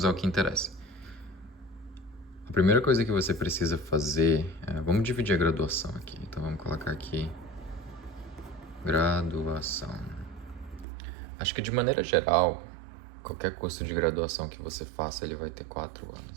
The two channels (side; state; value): left; drops out; at 10.9 s